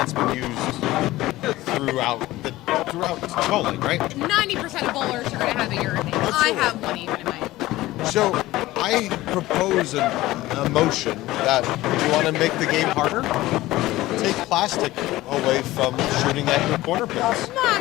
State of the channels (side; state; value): right; quieter; 17.3 dB